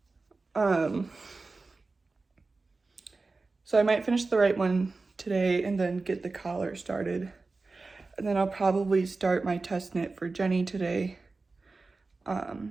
So I might finish the right one today and then get the collar started. And then I'll probably start my test knit for Jenny today. So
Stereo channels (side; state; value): left; quieter; 3.7 dB